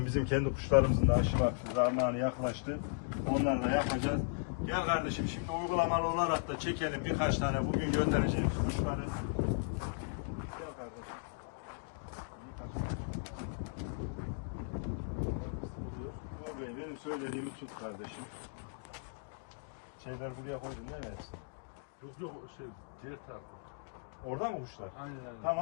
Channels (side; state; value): right; silent; digital silence